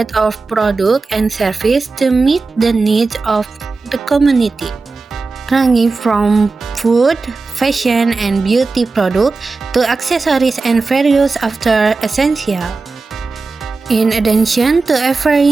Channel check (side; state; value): left; quieter; 4.0 dB